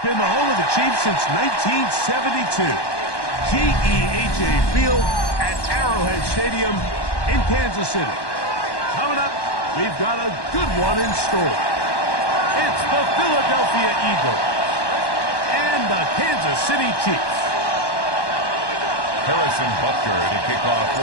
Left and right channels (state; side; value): late; right; 1.1 ms